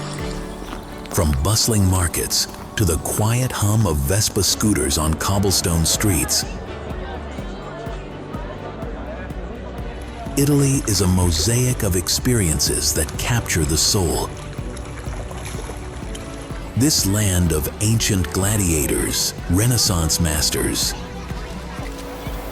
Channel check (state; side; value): identical; both; correlation 1.00